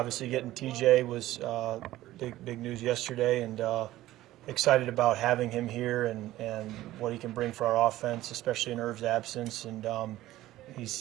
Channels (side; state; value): left; quieter; 15.5 dB